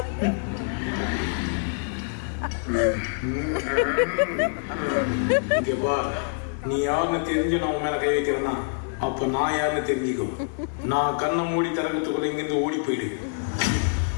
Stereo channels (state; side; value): silent; right; digital silence